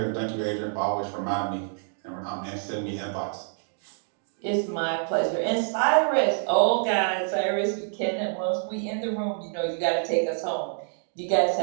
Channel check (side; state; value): left; silent; digital silence